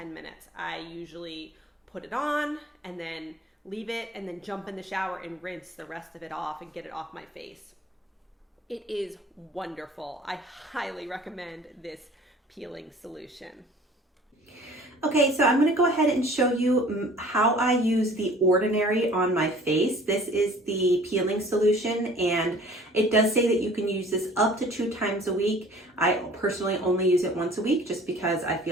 minutes. I usually put it on and then leave it and then jump in the shower and rinse the rest of it off and get it off my face. It is wonderful. I highly recommend this peeling solution. Okay, so I'm going to go ahead and show you how I use The Ordinary on my face. This is the peeling solution, and it does say that you can use this up to 2 times a week. I personally only use it once a week just because I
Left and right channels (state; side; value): normal; both; correlation 0.50